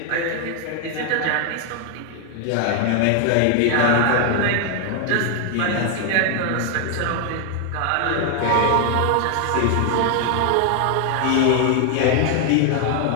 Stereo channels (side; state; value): both; different; correlation 0.00